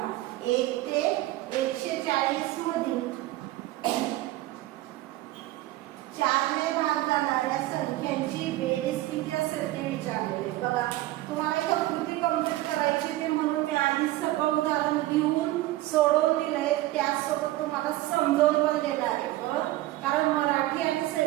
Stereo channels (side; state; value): left; quieter; 16.7 dB